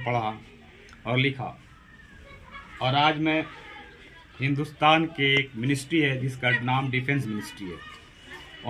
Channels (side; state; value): both; identical; correlation 1.00